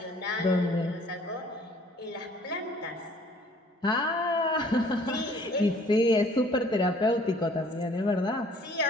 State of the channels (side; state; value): both; normal; correlation 0.57